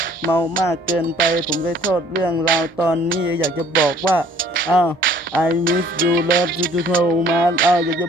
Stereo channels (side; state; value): both; normal; correlation 0.56